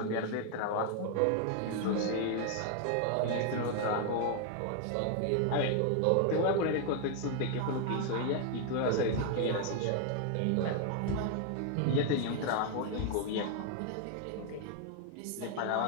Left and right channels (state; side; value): different; both; correlation 0.00